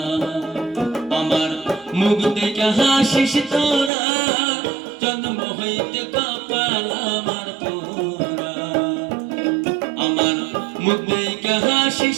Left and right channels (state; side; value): drops out; left; at 3.9 s